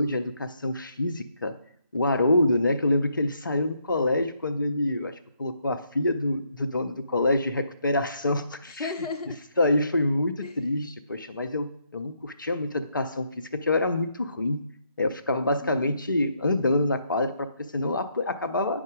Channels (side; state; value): both; inverted; correlation -0.74